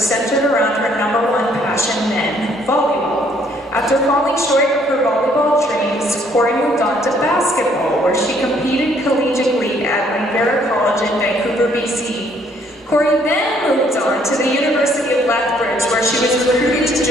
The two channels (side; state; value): both; normal; correlation 0.65